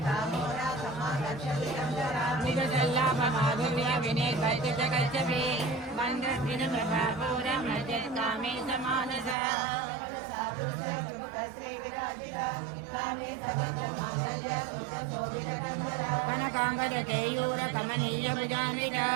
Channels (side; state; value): left; drops out; at 9.3 s